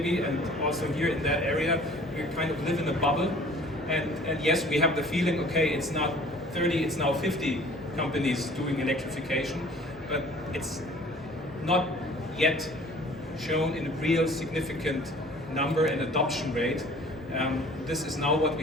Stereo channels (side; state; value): both; normal; correlation 0.50